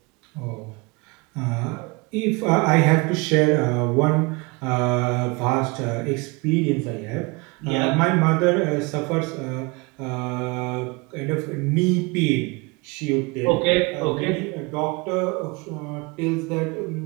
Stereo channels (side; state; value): left; quieter; 27.1 dB